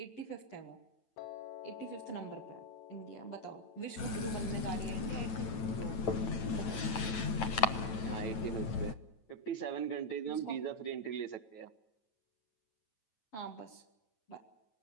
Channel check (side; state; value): right; late; 9.0 ms